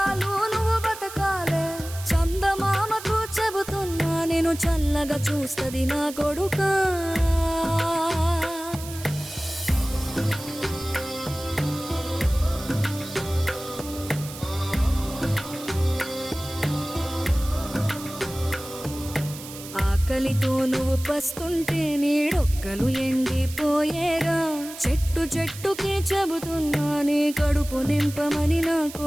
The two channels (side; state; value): right; noise; hiss, 13 dB below the sound